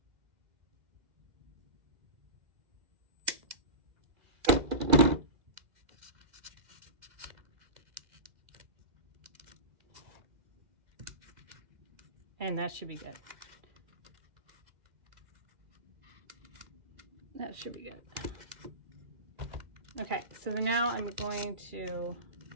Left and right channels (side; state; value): left; late; 2.3 ms